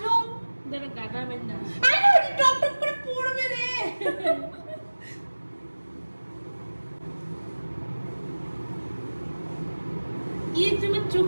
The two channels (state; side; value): inverted; both; correlation -1.00